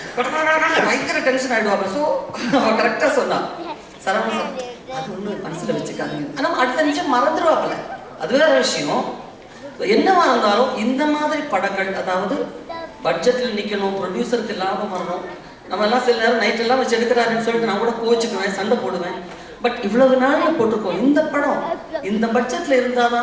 பயங்கர டென்ஷன் ஆகிடுவாங்க. ஸோ அவன் கரெக்டாக சொன்னான் சரவண சார் அது ஒன்று மனசில் வச்சுக்காதீங்க. ஆனால் அடுத்த நிமிஷம் மறந்துடுவாப்பில்ல, அது வேற விஷயம். என்னவா இருந்தாலும் இந்த மாதிரி படங்கள், அதாவது பட்ஜெட்டில் நிற்கணும், ப்ரொடியூசருக்கு லாபம் வரணும். நம்ம எல்லாம் சில நேரம் நைட்டெல்லாம் வச்சு எடுக்கிறாருன்னு சொல்லிட்டு நான் கூட கோச்சுக்குவேன், சண்டை போடுவேன். பட் இவ்வளவு நாளில் போட்டிருக்கோம் இந்த படம் இந்த பட்ஜெட்டில் இருந்தால்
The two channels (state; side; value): identical; both; correlation 1.00